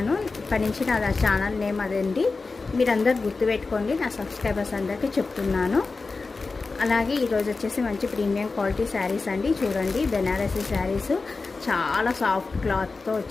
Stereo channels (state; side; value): quieter; right; 4.0 dB